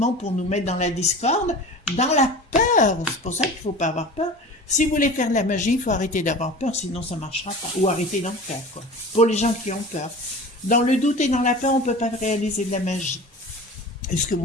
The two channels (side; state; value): both; normal; correlation 0.36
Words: pour nous mettre dans la discorde, dans la peur. C'est pour ça qu'il ne faut pas avoir peur. Si vous voulez faire de la magie, il faut arrêter d'avoir peur, sinon ça ne marchera pas. Ou arrêter d'en faire, quoi. Pour les gens qui ont peur. Dans le doute et dans la peur, on ne peut pas réaliser de la magie. Est-ce que